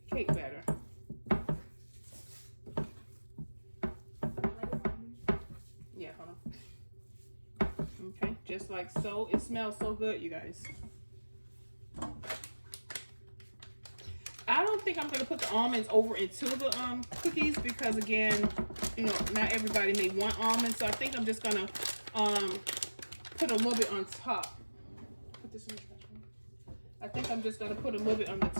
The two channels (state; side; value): inverted; both; correlation -1.00